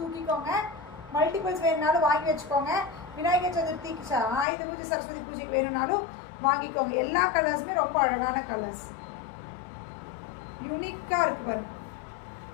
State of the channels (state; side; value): drops out; right; at 4.5 s